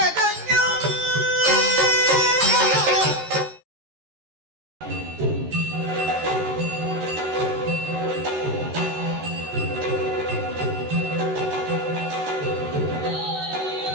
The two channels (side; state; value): left; late; 13 ms